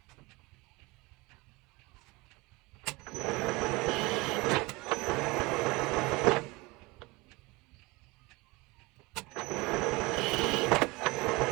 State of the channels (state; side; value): quieter; left; 24.0 dB